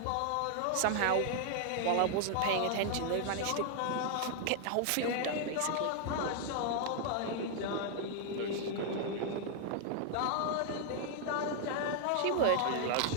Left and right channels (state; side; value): different; both; correlation 0.00